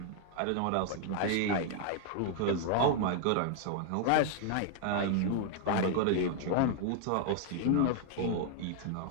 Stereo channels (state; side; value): different; both; correlation 0.00